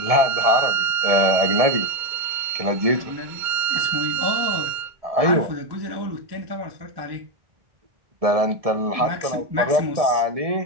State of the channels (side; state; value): left; late; 1.7 ms